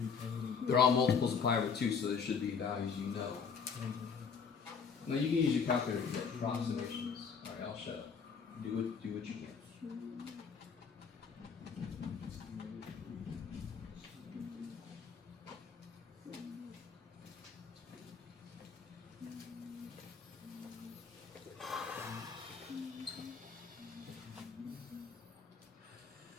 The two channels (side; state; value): right; quieter; 6.0 dB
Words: They're all multiples of pi over 2, so there should be values you know. Now you can use your calculator to get approximations. All right, I'll shut up. Do what you can.